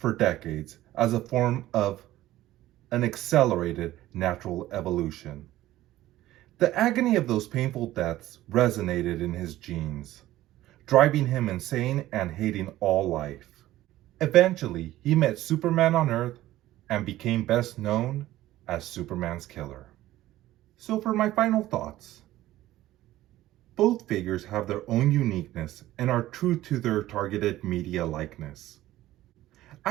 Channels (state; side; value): quieter; left; 15.2 dB